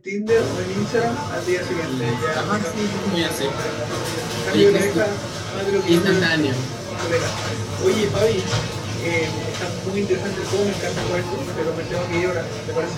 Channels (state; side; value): identical; both; correlation 1.00